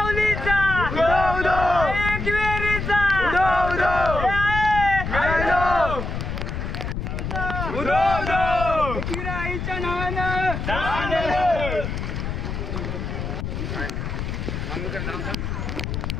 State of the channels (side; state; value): left; noise; rumble, 4 dB below the sound